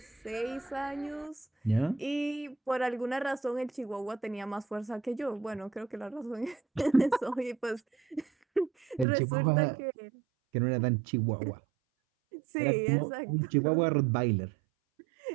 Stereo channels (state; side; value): drops out; left; at 9.1 s